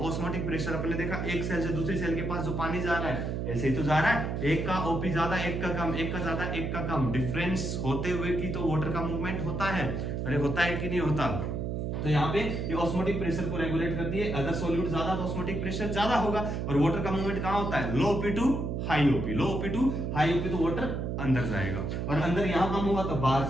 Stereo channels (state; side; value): noise; right; hum, 2 dB below the sound